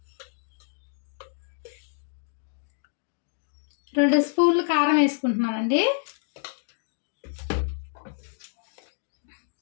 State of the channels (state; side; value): silent; right; digital silence